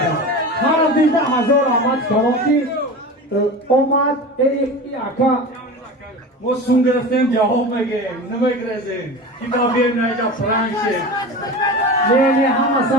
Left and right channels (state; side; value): normal; both; correlation 0.30